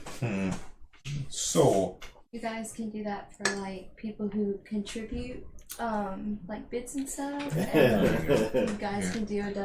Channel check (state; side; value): identical; both; correlation 1.00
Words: So, You guys can do that for like people who contribute, like bits and stuff. And you guys can do a